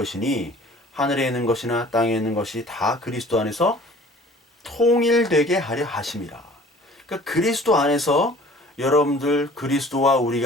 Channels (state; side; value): normal; both; correlation 0.49